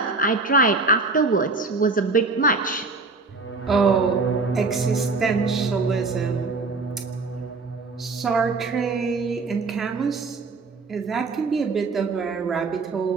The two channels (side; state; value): left; quieter; 3.9 dB